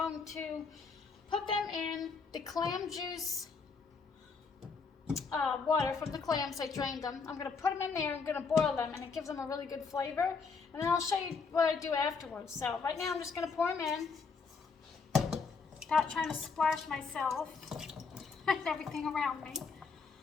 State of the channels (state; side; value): quieter; right; 5.0 dB